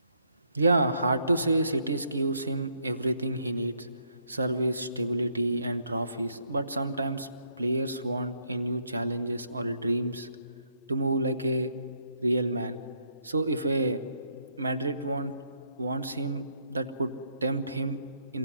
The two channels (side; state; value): both; inverted; correlation -0.73